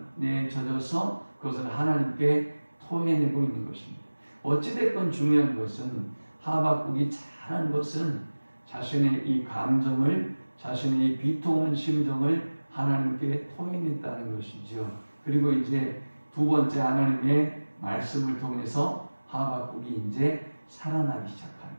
젖어서 그것을 하나님께 토해내고 있는 것입니다. 어찌됐건 중요한 것은 하박국이 잘한 것은 자신의 이 감정을 자신의 이 비통한 심정을 하나님께 토해냈다는 것이죠. 그리고 이제 두 번째 하나님의 말씀을 통해서 하박국이 이제 살아나기 시작합니다.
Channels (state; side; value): inverted; both; correlation -1.00